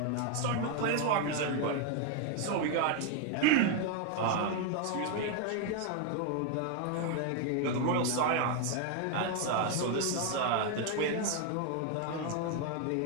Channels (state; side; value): different; both; correlation 0.01